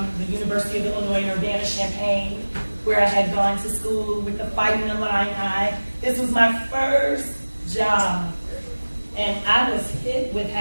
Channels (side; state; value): both; inverted; correlation -1.00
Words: the University of Illinois in Urbana-Champaign, where I had gone to school with the Fighting Illini. This was my first job, and I was hit with